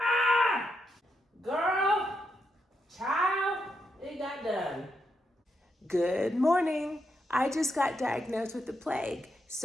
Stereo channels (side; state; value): both; normal; correlation 0.82